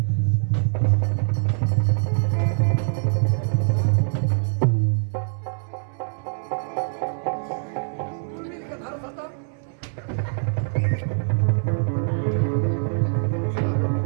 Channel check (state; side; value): silent; left; 63 dB below the other